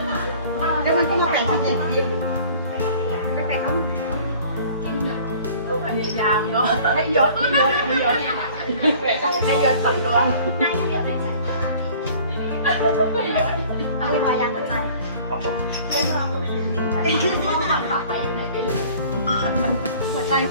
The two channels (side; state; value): both; inverted; correlation -0.49